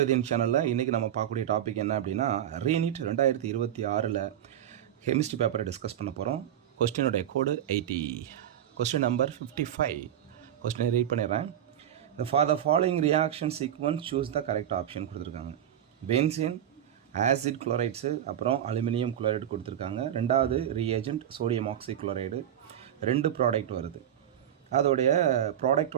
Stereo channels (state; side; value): quieter; left; 10.7 dB